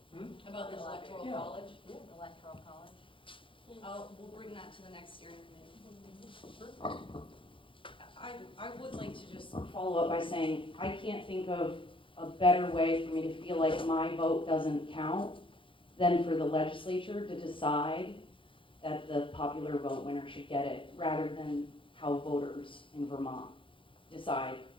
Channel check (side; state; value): right; late; 0.25 ms